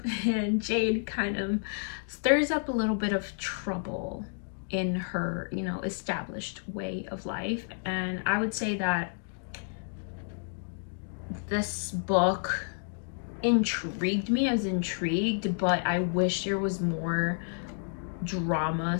and Jade kind of stirs up a little bit of trouble in her, you know, established way of life. And I would say that this book intrigued me. I was intrigued, but I wish there was more drama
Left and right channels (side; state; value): right; silent; digital silence